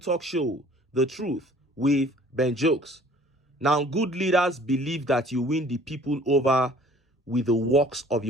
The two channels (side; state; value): both; normal; correlation 0.53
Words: show, The Truth with Ben Jokes. Now, good leaders believe that you win the people over with the works of